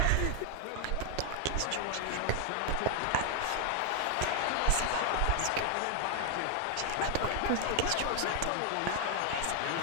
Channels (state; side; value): different; both; correlation 0.00